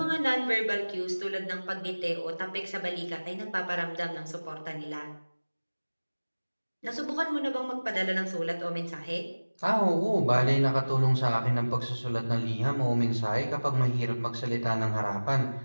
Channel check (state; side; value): inverted; both; correlation -1.00